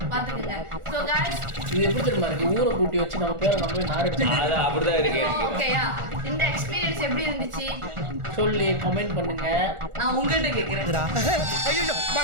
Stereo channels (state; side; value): late; left; 1.4 ms